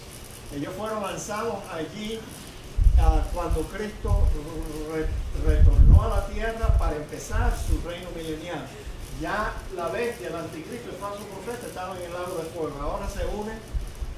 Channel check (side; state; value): both; identical; correlation 1.00